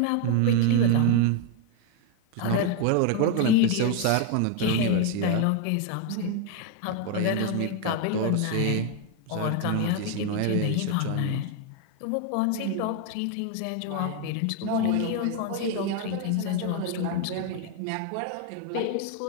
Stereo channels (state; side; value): different; both; correlation 0.01